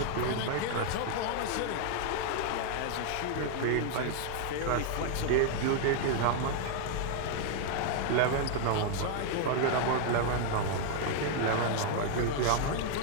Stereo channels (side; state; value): both; different; correlation 0.00